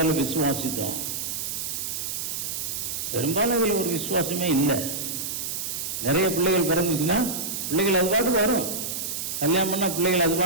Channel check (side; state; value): right; noise; hiss, 4 dB below the sound